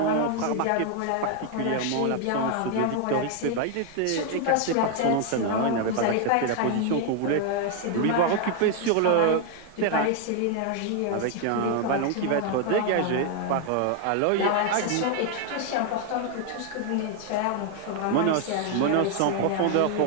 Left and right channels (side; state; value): both; different; correlation 0.00